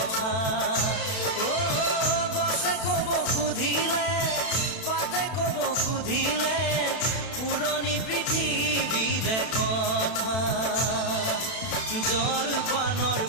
গছে কব সুধিলে পাতে কব সুধিলে পুৰণি পৃথিৱীৰে কথা জলপানৰ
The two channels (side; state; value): right; late; 32 ms